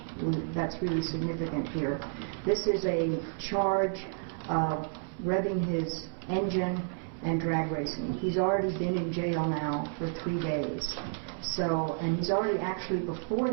that's really significant here. This is a charge of revving his engine and drag racing. He's already been in jail now for 3 days. So, and he's already actually before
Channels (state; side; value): silent; left; 57 dB below the other